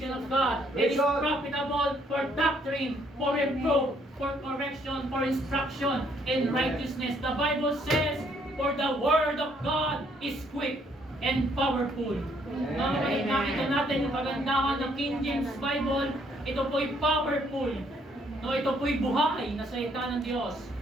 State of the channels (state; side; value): normal; both; correlation 0.67